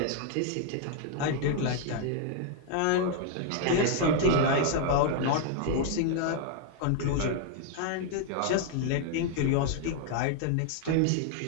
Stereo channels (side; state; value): both; different; correlation 0.00